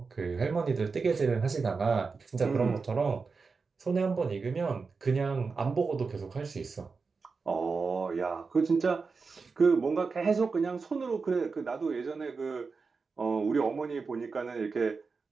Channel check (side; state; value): left; quieter; 4.7 dB